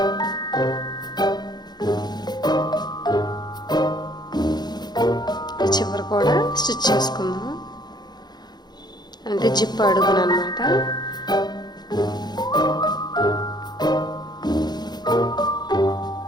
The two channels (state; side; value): late; right; 0.20 ms